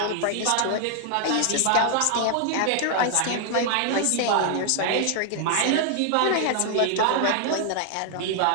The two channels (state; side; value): different; both; correlation 0.00